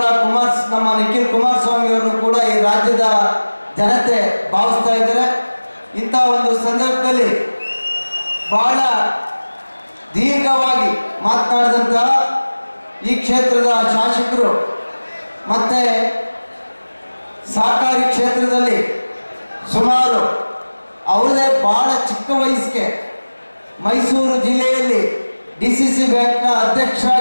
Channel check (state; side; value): inverted; both; correlation -1.00